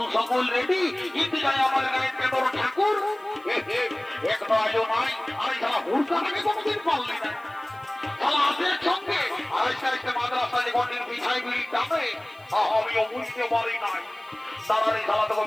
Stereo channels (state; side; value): noise; left; hiss, 30 dB below the sound